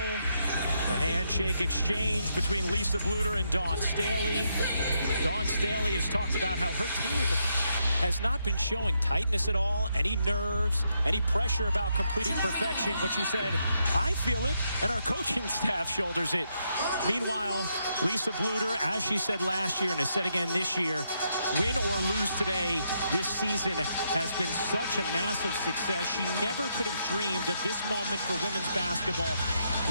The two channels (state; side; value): inverted; both; correlation -0.79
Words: handshake exchange between Lisa Bluder and Dawn Staley. Dawn Staley has talked about how her team has not been showing tightness at all, any nerves, any pressure about completing perfection, but she said, I feel it, and our coaching staff shoulders it. Meanwhile, Lisa Bluder, as she said last year and has said again this year, win or lose today, this season has been such a massive success. She never could have dreamed of this moment for women's basketball.